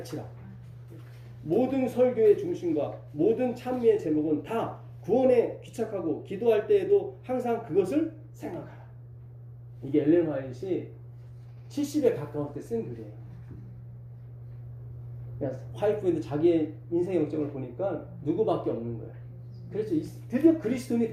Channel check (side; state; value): both; identical; correlation 1.00